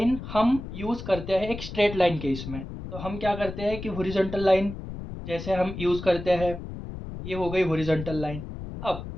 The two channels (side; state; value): left; noise; rumble, 9 dB below the sound